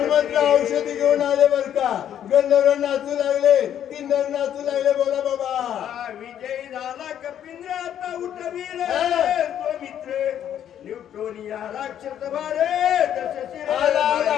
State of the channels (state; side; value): quieter; right; 10.1 dB